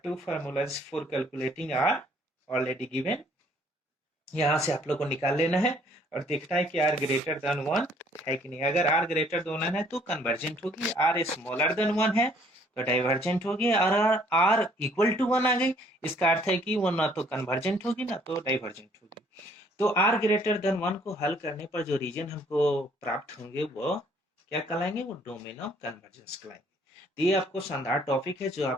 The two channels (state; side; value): normal; both; correlation 0.61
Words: two formulas for calculating r already given. यहाँ से आप लोग को निकाल लेना है और देखना है कि r ग्रेटर देन 1 है कि नहीं। अगर r ग्रेटर देन 1 है तो कन्वर्जेंट होगी, r स्मॉलर देन 1 है तो डाइवर्जेंट होगी, और r इक्वल टू 1 आ गई, इसका अर्थ है कि वो ना तो कन्वर्जेंट होगी ना तो डाइवर्जेंट होगी। तो r ग्रेटर देन 1 को हल करने पर जो रीजन हमको प्राप्त होंगे वो क्या कहलाएंगे, वो डोमेन ऑफ कन्वर्जेंस कहलाएंगे। तो ये आपको शानदार टॉपिक है जो